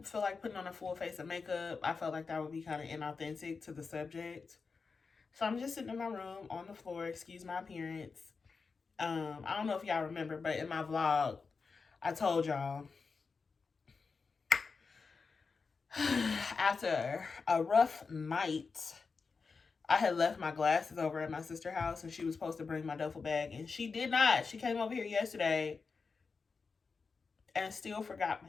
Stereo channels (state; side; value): quieter; right; 4.8 dB